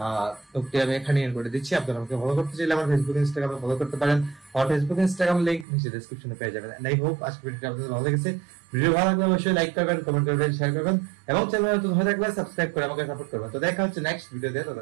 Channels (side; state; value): left; drops out; at 5.7 s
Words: ব্লগটি আমি এখানে এন্ড করে দিচ্ছি। আপনারা আমাকে ফলো করতে চাইলে আমার ফেসবুক ইনস্টাগ্রামে ফলো করতে পারেন। আমার ফেসবুক ইনস্টাগ্রাম লিংক নিচে ডেসক্রিপশনে পেয়ে যাবেন। আই হোপ আজকে ভিডিওটি আপনাদের ভালো লেগেছে। ভিডিও ভালো লাগলে অবশ্যই লাইক করবেন, কমেন্ট করবেন, শেয়ার করবেন এবং চ্যানেলে নতুন হয়ে থাকলে সাবস্ক্রাইব করে আমাকে সাপোর্ট করবেন। তো দেখা হচ্ছে নেক্সট ভিডিওতে।